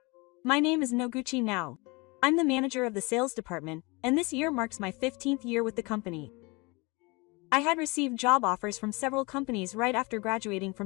My name is Noguchi now. I'm the manager of the sales department, and this year marks my 15th year with the company. I had received job offers from several companies right after graduating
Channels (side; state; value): right; quieter; 26.7 dB